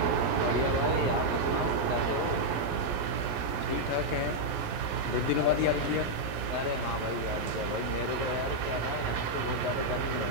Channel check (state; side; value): late; left; 12 ms